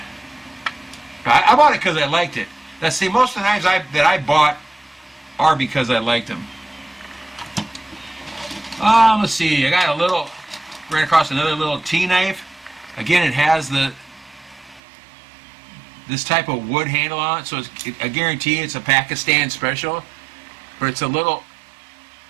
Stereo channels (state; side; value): drops out; left; at 14.8 s